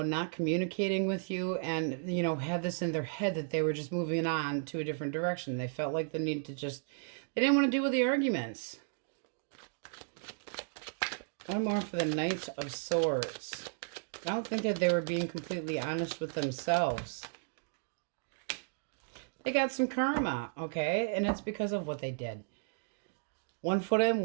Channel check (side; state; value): left; silent; digital silence